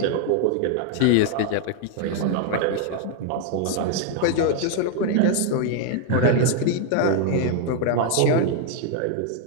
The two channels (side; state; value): both; different; correlation 0.00